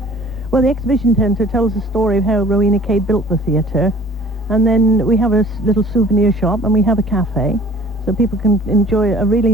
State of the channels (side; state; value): both; normal; correlation 0.50